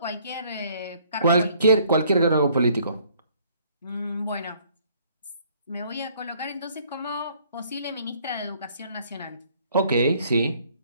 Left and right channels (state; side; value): inverted; both; correlation -0.62